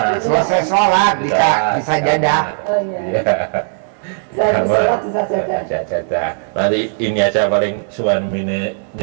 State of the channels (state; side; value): silent; left; 68 dB below the other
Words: Selesai sholat bisa jadah. Oh iya. Saya sholat bisa Jadah. Nanti ini aja paling suamine